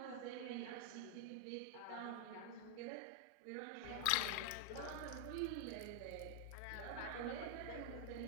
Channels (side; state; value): both; different; correlation 0.00